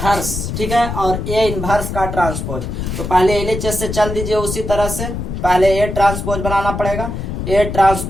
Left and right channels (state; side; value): noise; left; rumble, 5 dB below the sound